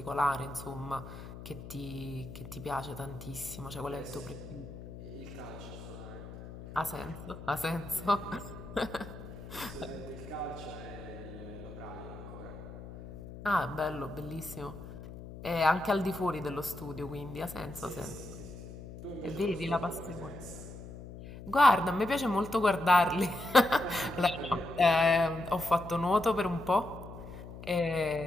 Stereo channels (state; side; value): noise; left; hum, 13 dB below the sound